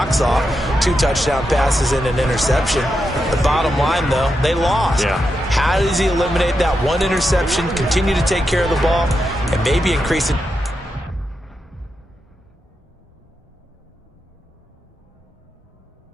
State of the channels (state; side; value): normal; both; correlation 0.86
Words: off. 2 touchdown passes and an interception. The bottom line, though, they lost. Yeah. How does he eliminate that one interception, continue to take care of the ball, and maybe increase it?